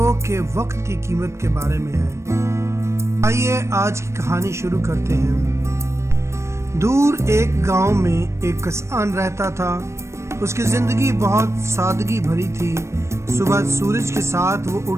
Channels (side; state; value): left; late; 0.13 ms